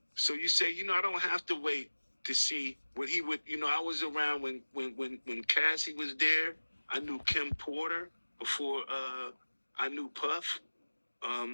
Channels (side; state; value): both; inverted; correlation -1.00